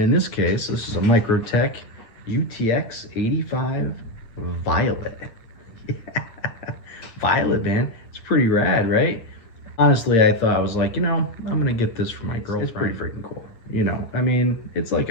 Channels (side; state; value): right; late; 8.8 ms